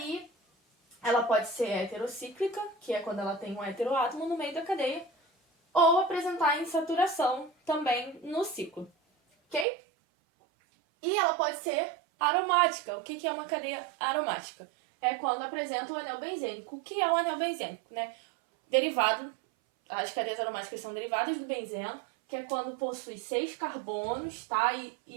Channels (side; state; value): left; drops out; at 9.7 s